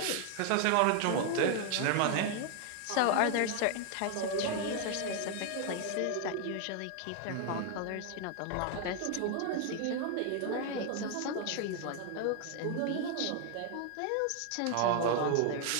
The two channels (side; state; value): both; different; correlation 0.00